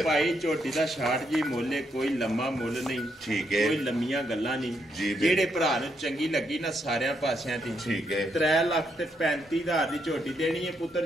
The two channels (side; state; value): both; normal; correlation 0.78